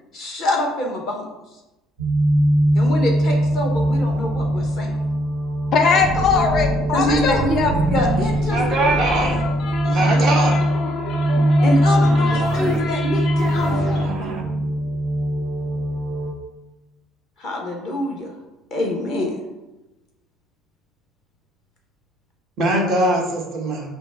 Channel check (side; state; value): both; normal; correlation 0.74